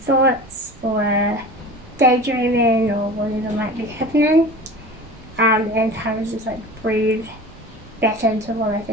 thoughts or daydreaming or whatever might be happening, and kind of just like breathe back into what I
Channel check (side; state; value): both; normal; correlation 0.36